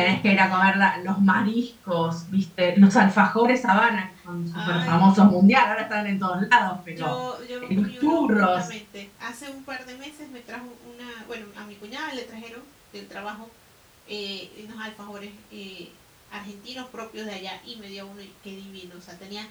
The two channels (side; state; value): both; identical; correlation 1.00